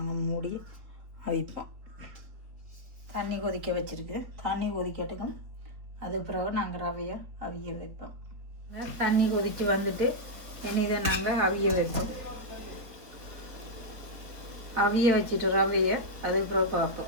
மூடி அவிப்போம். தண்ணி கொதிக்க வச்சுருக்கு. தண்ணி கொதிக்கட்டுக்கும். அது பிறகு நாங்கள் ரவையை அவிய வைப்போம். தண்ணி கொதித்து வந்துட்டு இனி இதை நாங்கள் அவிய வைப்போம். அவிய வச்சுட்டு ரவையை அதுக்கு பிறகு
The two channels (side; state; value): left; late; 4.1 ms